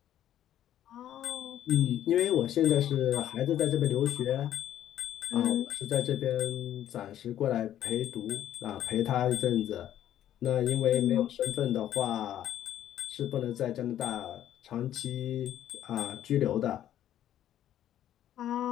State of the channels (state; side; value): quieter; right; 11.6 dB